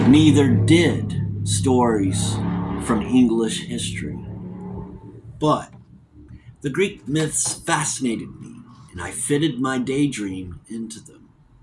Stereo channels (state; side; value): identical; both; correlation 1.00